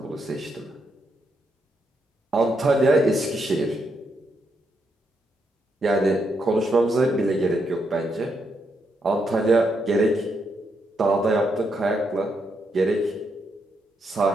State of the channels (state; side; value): normal; both; correlation 0.79